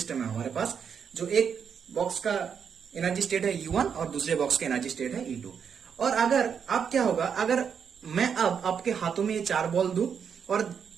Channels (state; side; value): quieter; left; 7.1 dB